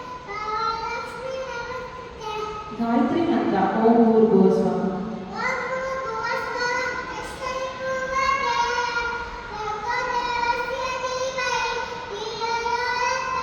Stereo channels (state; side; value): identical; both; correlation 1.00